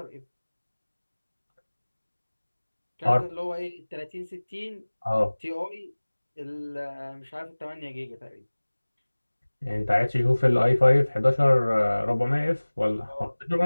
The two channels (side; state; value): both; inverted; correlation -1.00